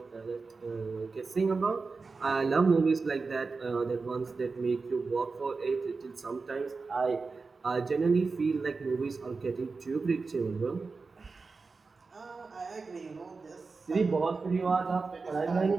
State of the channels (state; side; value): quieter; left; 4.3 dB